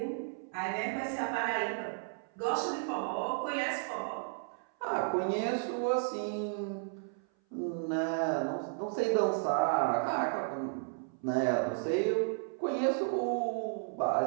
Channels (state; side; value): silent; left; 55 dB below the other